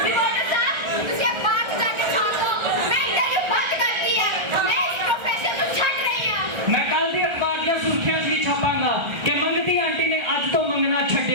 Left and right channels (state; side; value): late; left; 1.3 ms